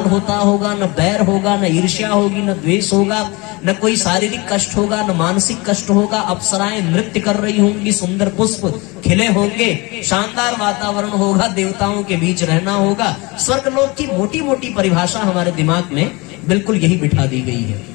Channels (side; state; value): right; quieter; 25.3 dB